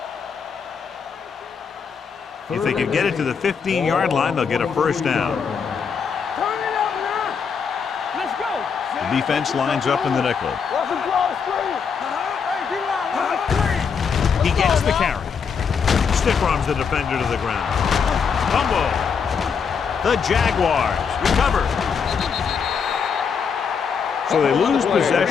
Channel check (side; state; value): right; quieter; 6.3 dB